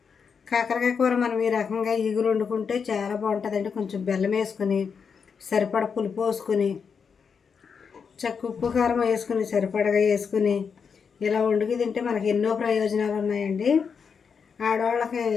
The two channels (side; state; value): right; quieter; 6.2 dB